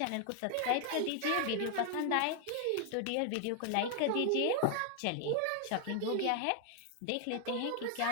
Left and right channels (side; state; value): both; different; correlation 0.00